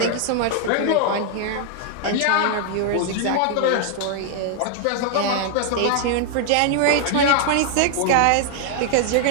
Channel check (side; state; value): both; different; correlation 0.00